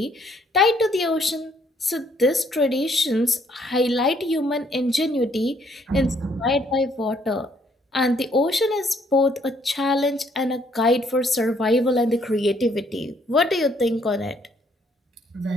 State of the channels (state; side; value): normal; both; correlation 0.67